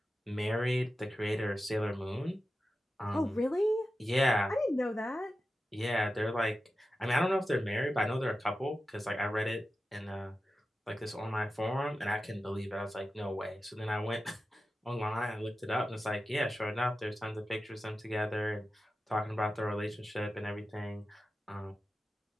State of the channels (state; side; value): normal; both; correlation 0.92